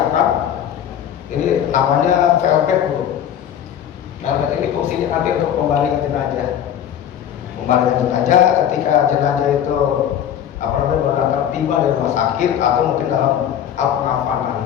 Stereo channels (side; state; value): right; quieter; 9.8 dB